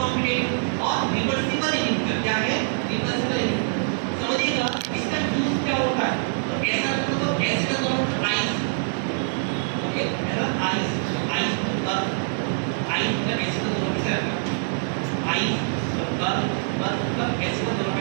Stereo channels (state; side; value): silent; left; digital silence